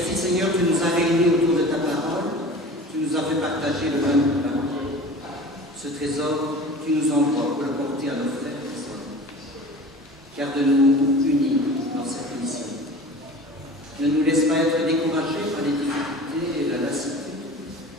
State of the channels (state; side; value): normal; both; correlation 0.39